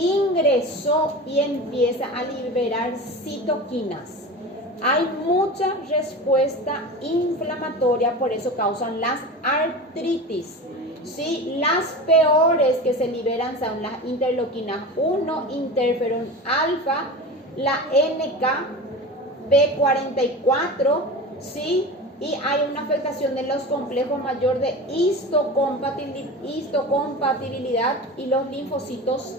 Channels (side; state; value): both; normal; correlation 0.30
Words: y empieza a liberar citoquinas. Hay mucha respuesta inflamatoria, por eso causan las artritis. ¿Sí? Las peores que se liberan son las interleuquinas 1, interferón alfa, la NK-B44, ¿sí? Y hay una afectación de los complejos mayor de histocompatibilidad y los